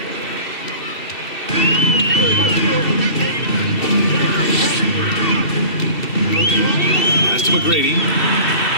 Pass to Mcgrady.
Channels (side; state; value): right; late; 2.7 ms